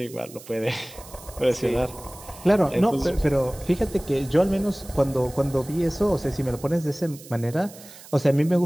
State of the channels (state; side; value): noise; right; hiss, 19 dB below the sound